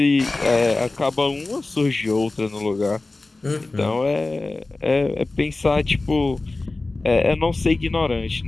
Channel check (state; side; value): quieter; right; 3.2 dB